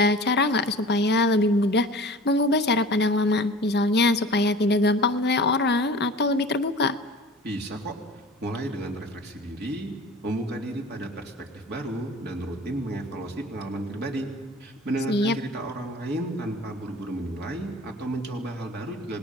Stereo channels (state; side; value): normal; both; correlation 0.40